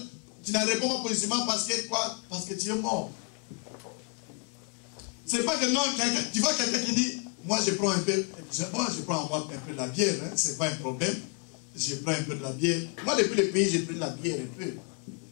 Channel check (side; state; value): right; quieter; 37.3 dB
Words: Tu ne réponds pas positivement parce que quoi? Parce que tu es mort. C'est pas que non, tu vois quelqu'un qui dit, moi je prends un peu, moi je prends un peu de la bière, hein, c'est pas un problème. Je prends un peu de la bière. Moi depuis le pays, j'ai pris de la bière un peu.